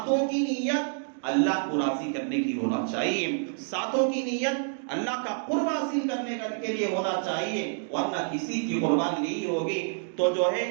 کی نیت اللہ کو راضی کرنے کی ہونا چاہیے، ساتوں کی نیت اللہ کا قرب حاصل کرنے کے لیے ہونا چاہیے، ورنہ کسی کی قربانی نہیں ہوگی۔ تو جو ہے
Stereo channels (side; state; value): left; silent; digital silence